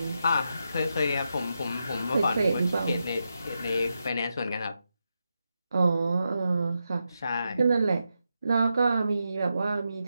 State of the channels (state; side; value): inverted; both; correlation -0.86